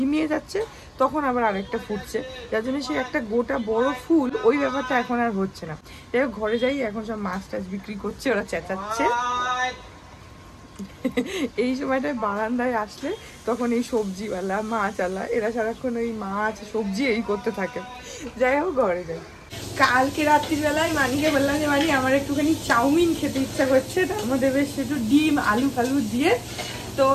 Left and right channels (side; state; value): both; identical; correlation 1.00